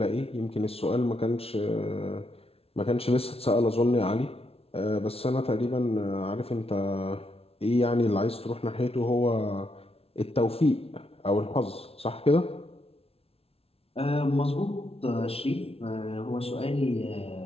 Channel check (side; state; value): right; late; 0.29 ms